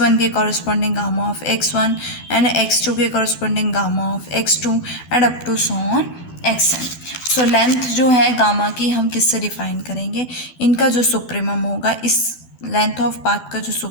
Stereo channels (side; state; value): right; late; 12 ms